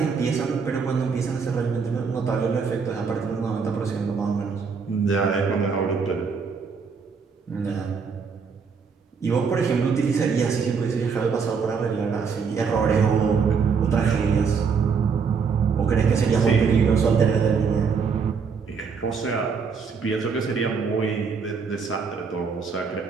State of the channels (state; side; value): quieter; left; 5.7 dB